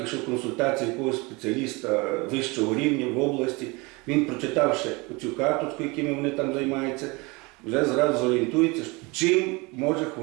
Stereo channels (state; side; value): quieter; left; 26.1 dB